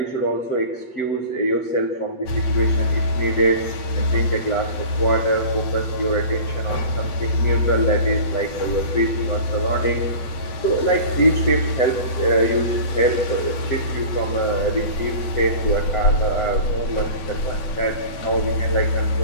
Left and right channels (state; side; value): late; right; 8.8 ms